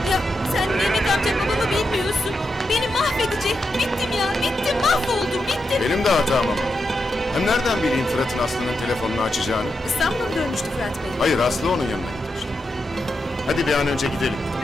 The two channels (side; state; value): both; normal; correlation 0.86